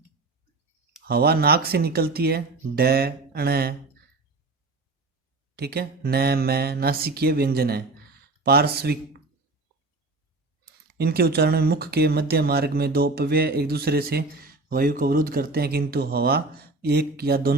हवा नाक से निकलती है, ड अण। ठीक है, न मैं नासिकीय व्यंजन है। पार्श्विक, इनके उच्चारण में मुख के मध्य मार्ग में 2 अपव्यय एक दूसरे से वायु को अवरुद्ध करते हैं, किंतु हवा एक या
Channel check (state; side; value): quieter; left; 3.3 dB